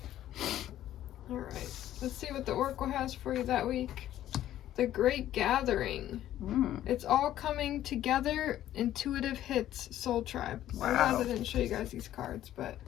All right. Let's see what the Oracle has for you that week. The Great Gathering. It's all coming together. Intuitive hits. Soul Tribe. Wow. I realized I didn't show you guys these cards, but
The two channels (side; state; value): right; quieter; 12.6 dB